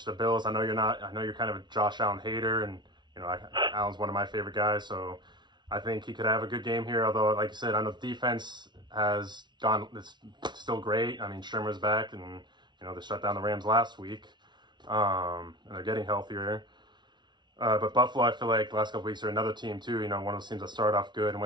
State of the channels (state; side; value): late; left; 0.21 ms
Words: to the Bills. I know you're not. I know you're kind of a Josh Allen hater, and Allen's one of my favorite guys. So I think he could have a good game here. Although, like you said, I know defense has gone. It's still great. I mean, Shermer's back, and they shut down the Rams last week, and they're getting healthier. But Buffalo, I feel like the last couple weeks are another team too. One of those teams that started off good and